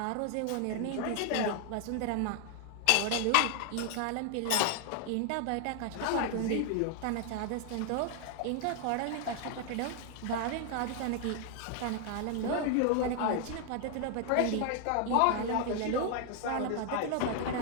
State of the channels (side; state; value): both; different; correlation 0.00